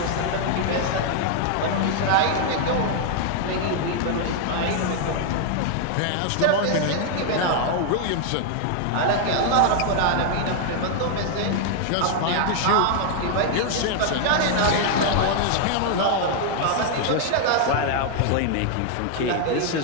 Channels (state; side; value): different; both; correlation 0.00